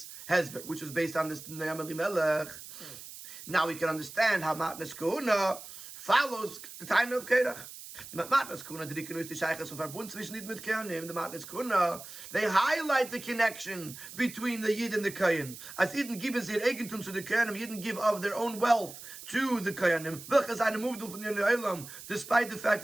Hezber, which is based on this Ne'am Elimelech, now we can understand how Matnas Kahuna follows the time of Korach. The Matnas Kahuna, they highlight the connection between the Yid and the Kohen. As Yidden geben sie ihr Eigentum zu the Kohanim, Yidden give of their own wealth to the Kohanim, despite the fact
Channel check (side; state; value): right; noise; hiss, 14 dB below the sound